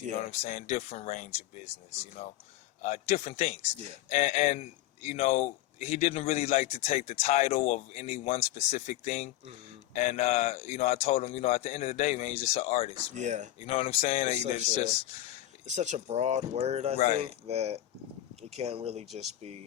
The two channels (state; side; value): quieter; right; 14.3 dB